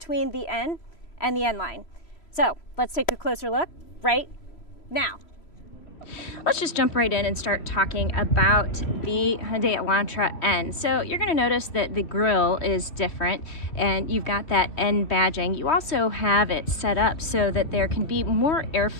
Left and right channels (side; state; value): right; late; 3.0 ms